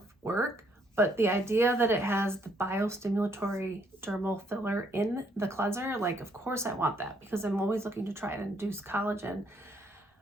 work. But the idea that it has the biostimulatory dermal filler in the cleanser, like of course I want that because I'm always looking to try and induce collagen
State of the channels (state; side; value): normal; both; correlation 0.70